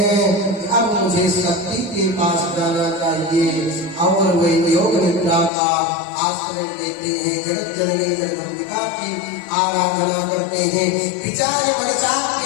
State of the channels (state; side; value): drops out; right; at 5.5 s